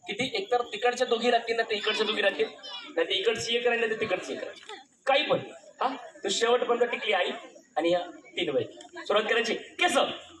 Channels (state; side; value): identical; both; correlation 1.00